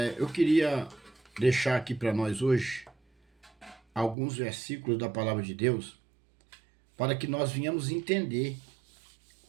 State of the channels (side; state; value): left; drops out; at 4.2 s